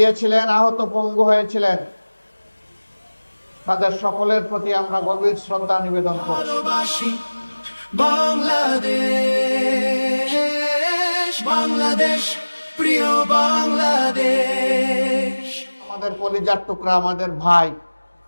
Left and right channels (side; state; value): both; inverted; correlation -1.00